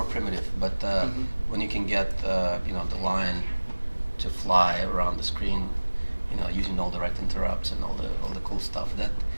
primitive. But when you can get the line to fly around the screen, using all the right interrupts and all the cool stuff, that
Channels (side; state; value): both; inverted; correlation -1.00